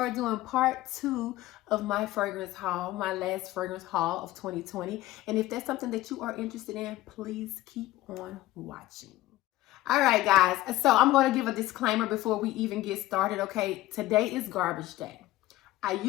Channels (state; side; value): quieter; right; 16.3 dB